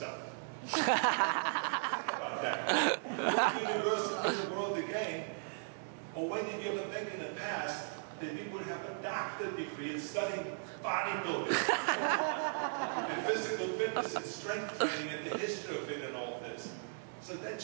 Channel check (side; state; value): left; silent; digital silence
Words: Think about that. What university in the world again, or when did you ever think in the past that we would have a doctorate degree in studying bodybuilding and physical fitness and strength training and the history of it and all this? So that